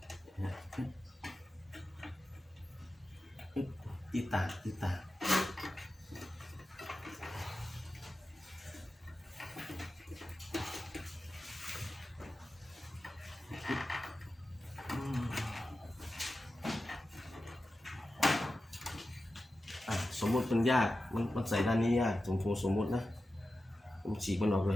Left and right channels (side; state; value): both; normal; correlation 0.93